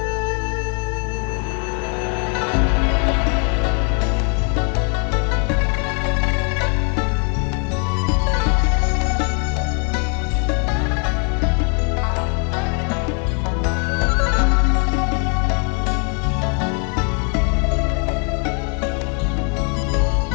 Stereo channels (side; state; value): right; quieter; 38.3 dB